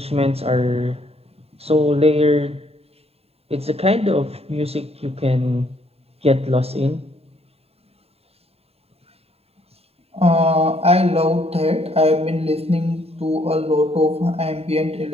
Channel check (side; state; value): left; late; 0.29 ms